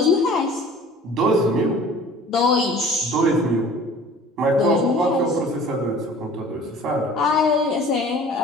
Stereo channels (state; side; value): normal; both; correlation 0.47